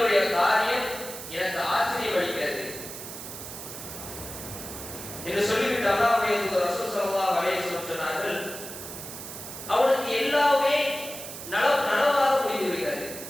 காரியம் எனக்கு ஆச்சரியம் அளிக்கிறது என்று சொல்லிவிட்டு அல்லாஹ்வுடைய தூதர் ரசூல் ஸல்லல்லாஹு அலைஹி வஸல்லம் சொன்னார்கள், அவனுக்கு எல்லாமே நலவாக முடிந்து விடுகிறது.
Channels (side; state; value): right; noise; hiss, 10 dB below the sound